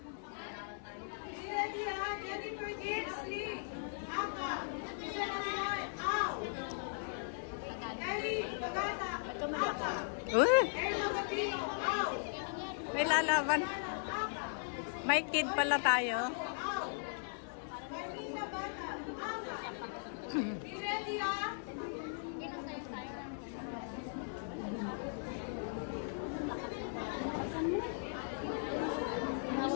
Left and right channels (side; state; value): right; silent; digital silence